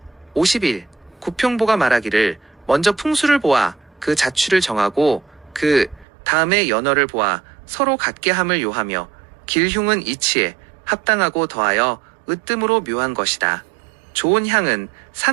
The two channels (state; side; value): drops out; left; at 6.1 s